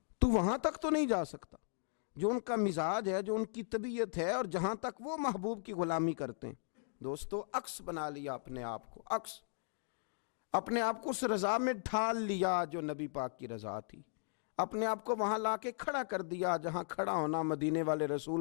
تو وہاں تک تو نہیں جا سکتا جو ان کا مزاج ہے، جو ان کی طبیعت ہے، اور جہاں تک وہ محبوب کی غلامی کرتے ہیں، دوستو عکس بنا لیا اپنے آپ کو، عکس اپنے آپ کو اس رضا میں ڈھال لیا جو نبی پاک کی رضا تھی، اپنے آپ کو وہاں لا کے کھڑا کر دیا جہاں کھڑا ہونا مدینے والے رسول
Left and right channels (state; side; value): silent; right; digital silence